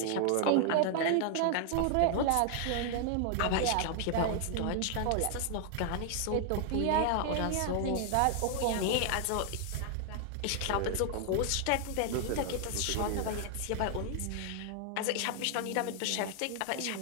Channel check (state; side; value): different; both; correlation 0.00